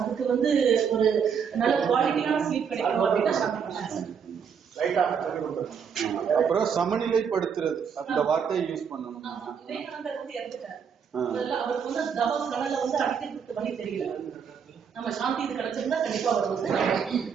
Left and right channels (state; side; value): quieter; left; 7.0 dB